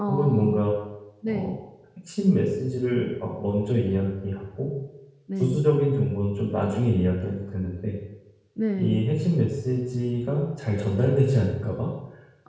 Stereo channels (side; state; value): both; identical; correlation 1.00